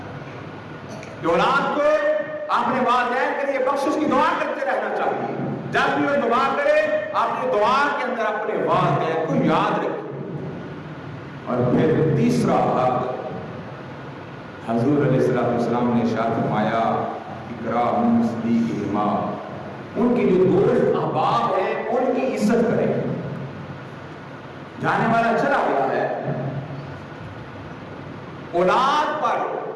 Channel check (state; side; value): identical; both; correlation 1.00